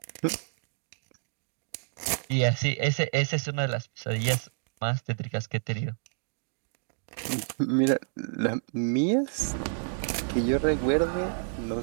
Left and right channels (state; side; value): silent; left; digital silence